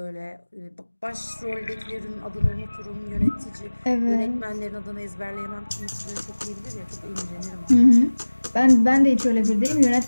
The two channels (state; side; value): inverted; both; correlation -1.00